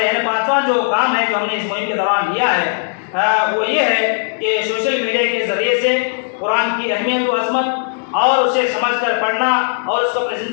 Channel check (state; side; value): silent; right; 68 dB below the other